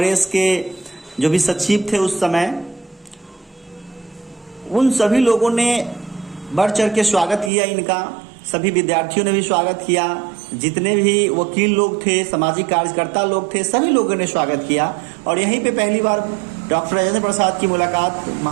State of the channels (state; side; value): drops out; left; at 7.5 s